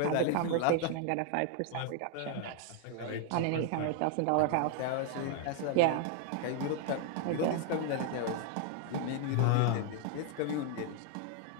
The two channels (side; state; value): both; different; correlation 0.00